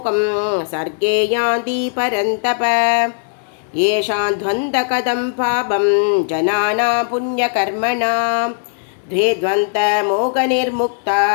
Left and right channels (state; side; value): silent; right; digital silence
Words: सर्गे यान्ति परन्तप येषां द्वन्द्वकदं पापं जनानां पुण्यकर्मणां द्वे द्वन्द्वमोहनिर्मुक्ता